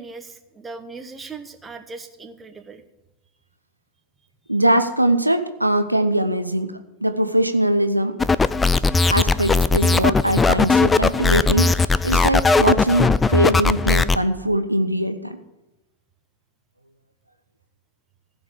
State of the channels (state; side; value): normal; both; correlation 0.08